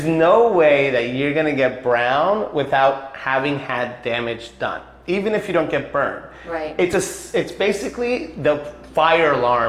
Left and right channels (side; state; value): both; identical; correlation 1.00